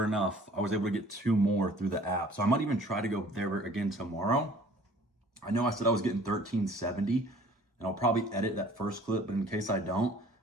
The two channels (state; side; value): normal; both; correlation 0.51